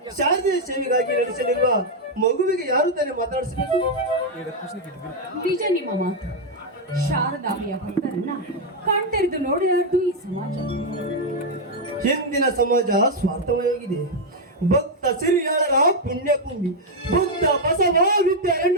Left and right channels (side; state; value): both; normal; correlation 0.01